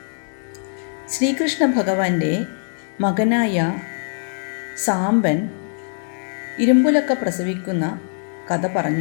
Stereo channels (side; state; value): right; silent; 64 dB below the other